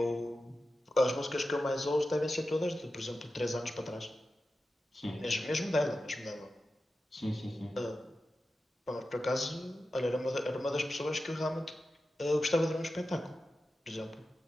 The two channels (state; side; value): normal; both; correlation 0.92